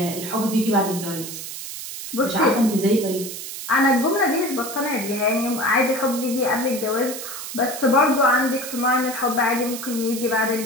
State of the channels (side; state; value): right; noise; hiss, 9 dB below the sound